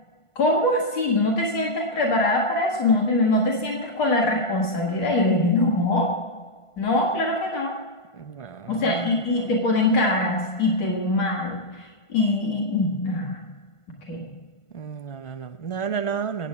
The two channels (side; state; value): right; late; 1.5 ms